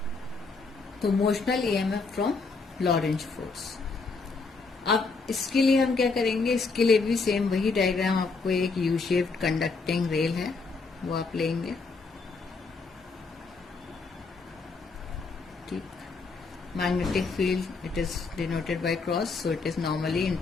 तो motional EMF from Lorentz force. अब इसके लिए हम क्या करेंगे, इसके लिए भी सेम वही डायग्राम, आपको एक यू शेप्ड कंडक्टिंग रेल है वो आप लेंगे, ठीक। Magnetic field it is denoted by cross, so it is normally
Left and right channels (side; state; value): right; quieter; 4.2 dB